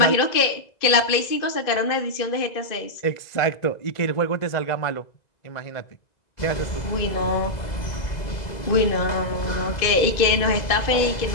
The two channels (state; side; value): late; right; 2.0 ms